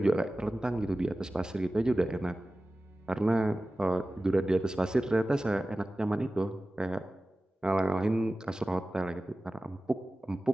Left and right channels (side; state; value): both; normal; correlation 0.96